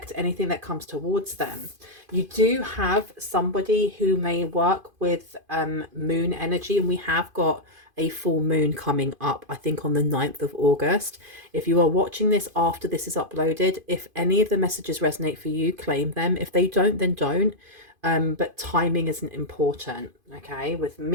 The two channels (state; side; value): late; left; 2.5 ms